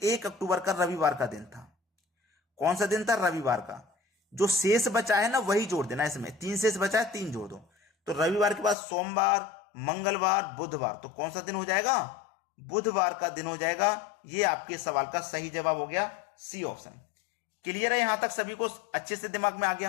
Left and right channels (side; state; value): right; drops out; at 8.8 s